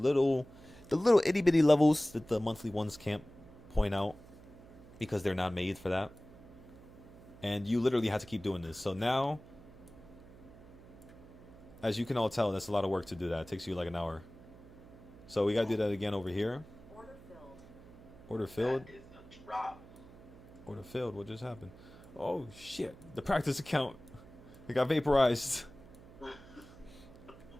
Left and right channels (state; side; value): noise; right; hum, 20 dB below the sound